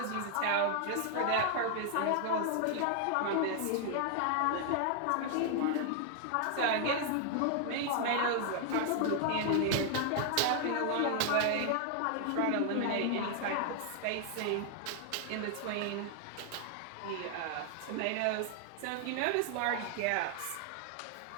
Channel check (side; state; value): both; different; correlation 0.00